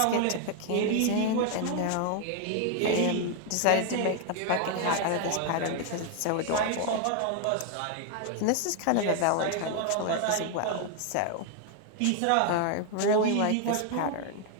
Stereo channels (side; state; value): both; different; correlation 0.00